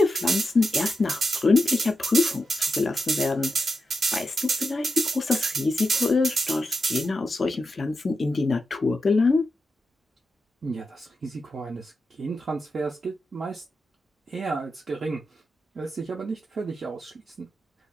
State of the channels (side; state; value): both; normal; correlation 0.88